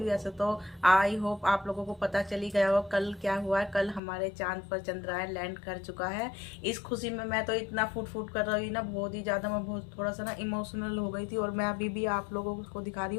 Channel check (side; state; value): right; drops out; at 4.0 s